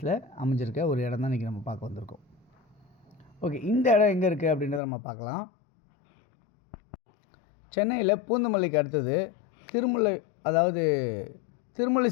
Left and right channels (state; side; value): drops out; right; at 4.8 s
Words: அமைஞ்சிருக்க ஒரு இடம் தான் இன்றைக்கி நம்ம பார்க்க வந்திருக்கோம். ஓகே, இந்த இடம் எங்கே இருக்குது அப்படின்றத நம்ம பார்க்கலாம். சென்னையில் பூந்தமல்லிக்கு அடுத்தது